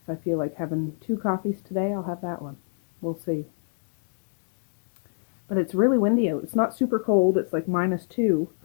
I feel like having 2 coffees today, I'll have that one. We'll see. But it's really windy out. It's not super cold. It's like -2.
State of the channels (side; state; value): right; silent; digital silence